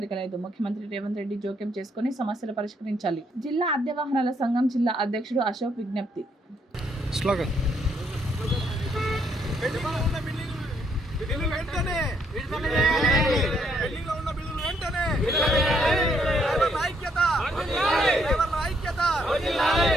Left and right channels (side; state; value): both; normal; correlation 0.72